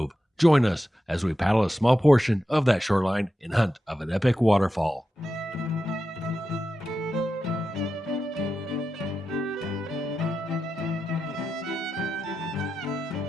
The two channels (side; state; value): both; normal; correlation 0.90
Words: Join us as we paddle a small portion of that shoreline in hunt of an epic waterfall.